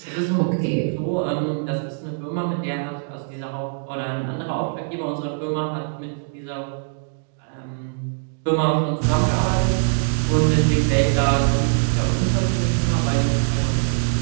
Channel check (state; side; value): silent; left; digital silence